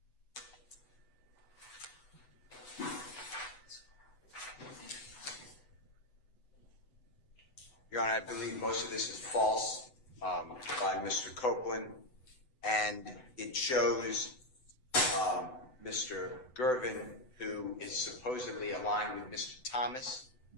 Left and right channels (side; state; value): right; late; 7.9 ms